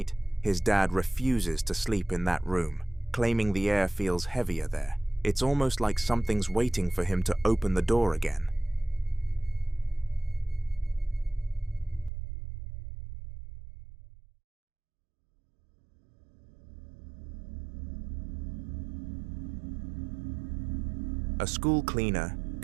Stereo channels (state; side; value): drops out; left; at 12.1 s